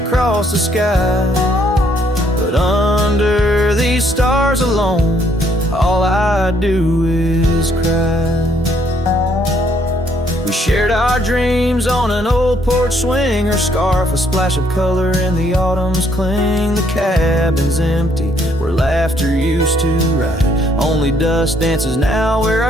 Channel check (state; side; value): normal; both; correlation 0.68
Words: the sky, but under these stars alone, all I do is cry. We shared our dreams on an old porch swing. Her scarf a splash of color in the autumn's cling. The cabin's empty where laughter used to ride. Only dust dances now where